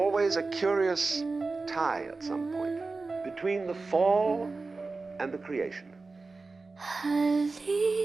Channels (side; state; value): left; quieter; 3.8 dB